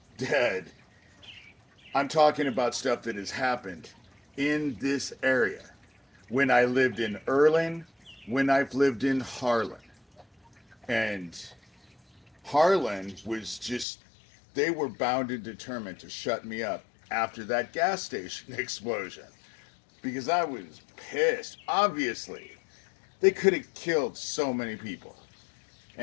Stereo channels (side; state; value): right; drops out; at 13.9 s